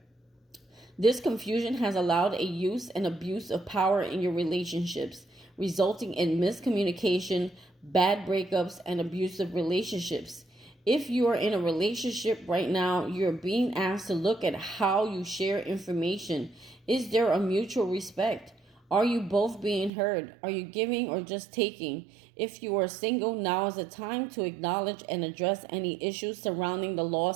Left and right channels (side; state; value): left; drops out; at 19.9 s